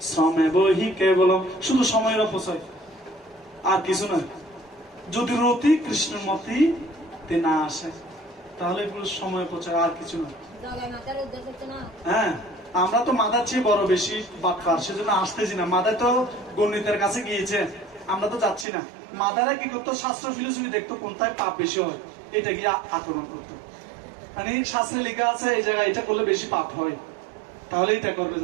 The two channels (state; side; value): drops out; left; at 18.7 s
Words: শ্রমে বহি কেবলম। শুধু সময়ের অপচয়, আর কিছু নয়। যদি রতি কৃষ্ণের মতি না আসে, তাহলে এগুলো সময় অপচয়, আর কিছু নয়। হ্যাঁ, আমরা তো মাদার চেয়ে বড় বেশি বাটপার, সেজন্য আসতেছি না। মাদার তো গণিতের কাছে গিয়েছে, আমরা তো যাচ্ছি না। মাদারা কি করতো, শাস্ত্র ফিলোসফি দেখতো কোনটায় পাপ বেশি হয়, এটা গিয়ে আক্রমণ করতো। মানে শাস্ত্রে লেখা আছে এই জায়গায় এটা করলে বেশি পাপ হয়, তাহলে এটা করবে